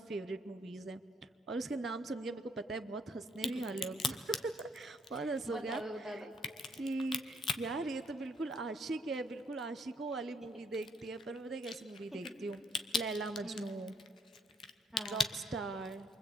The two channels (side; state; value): both; normal; correlation 0.69